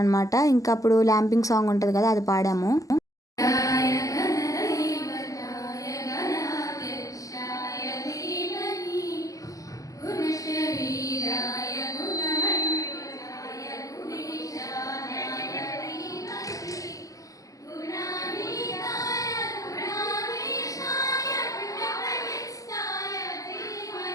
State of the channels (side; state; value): right; late; 0.17 ms